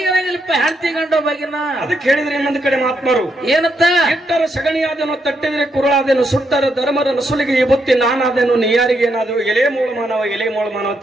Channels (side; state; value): both; normal; correlation 0.79